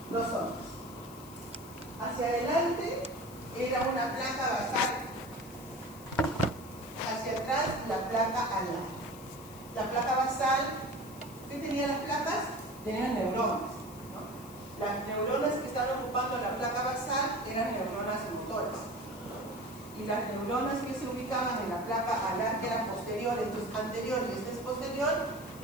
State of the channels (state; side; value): noise; left; hiss, 19 dB below the sound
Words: Dos zonas. Hacia adelante era una placa basal, hacia atrás la placa alar. La placa basal, ¿qué tenían las placas? Tenían neuronas, ¿no? Las neuronas que estaban ocupando la placa basal eran neuronas motoras. Y las neuronas que se ubicaban en la placa alar, que eran posteriores, esto es anterior y este es posterior,